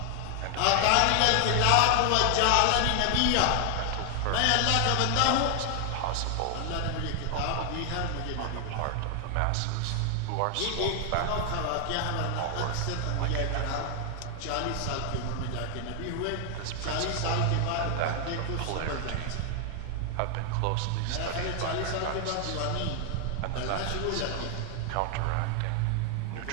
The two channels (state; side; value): different; both; correlation 0.00